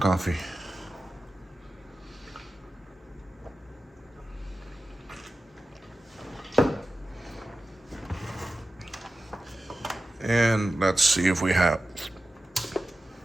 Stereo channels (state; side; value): normal; both; correlation 0.94